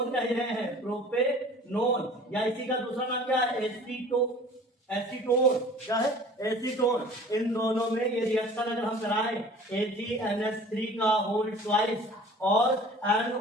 कह रहे हैं, प्रोपेनोन, या इसी का दूसरा नाम क्या है? एसीटोन। क्या है? एसीटोन। इन दोनों में ये रिएक्शन अगर हम कराएं AgNH3 का होल ट्वाइस और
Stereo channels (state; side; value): normal; both; correlation 0.46